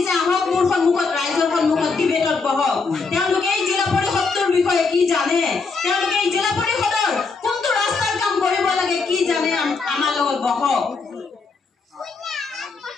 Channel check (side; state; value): right; quieter; 4.5 dB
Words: আহক মোৰ সন্মুখত ৰাইজৰ সন্মুখত ডিবেটত বহক তেওঁলোকে এই জিলা পৰিষদৰ বিষয়ে কি জানে তেওঁলোকে এই জিলা পৰিষদৰ কোনটো ৰাস্তাৰ কাম কৰিব লাগে কি জানে আমাৰ লগত বহক